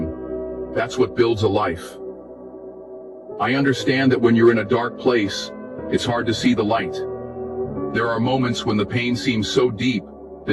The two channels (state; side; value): identical; both; correlation 1.00